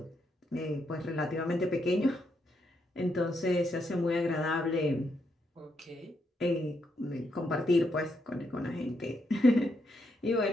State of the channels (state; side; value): normal; both; correlation 0.79